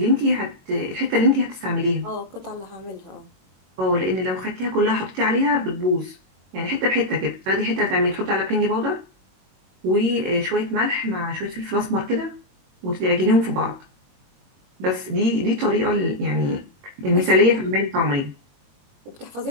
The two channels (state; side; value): late; left; 22 ms